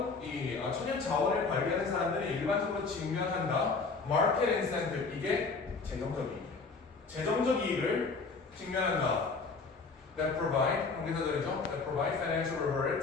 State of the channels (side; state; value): right; quieter; 4.4 dB